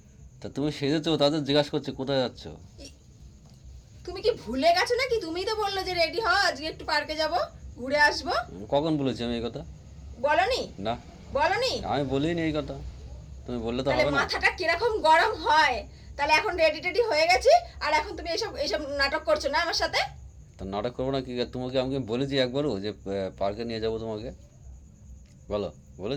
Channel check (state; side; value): identical; both; correlation 1.00